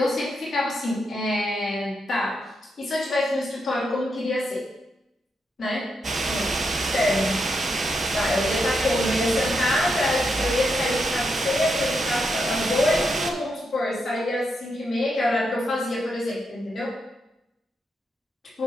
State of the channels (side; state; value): both; normal; correlation 0.82